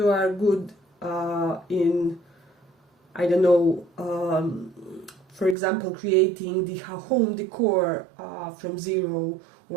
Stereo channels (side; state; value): left; drops out; at 5.6 s